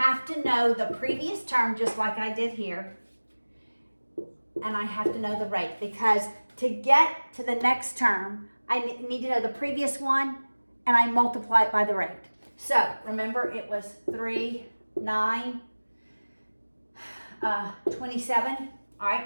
to know the previous term just like I did here, and I have to know the rate, because to get to the next term, I need to know the previous one, and I multiply it by the rate. So remember, it was 3, 9, 27. All right,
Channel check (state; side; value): inverted; both; correlation -1.00